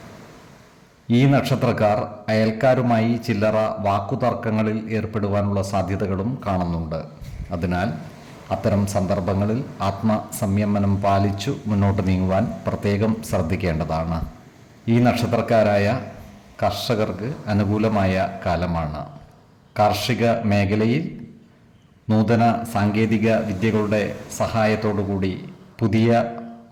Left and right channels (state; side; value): identical; both; correlation 1.00